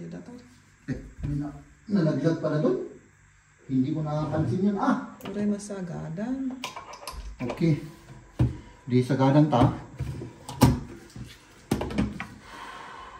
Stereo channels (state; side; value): identical; both; correlation 1.00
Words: data. Nalaglag pala doon. Hindi ko nakapansin yun. Uray masagadan. Okay. Di sagadan ta.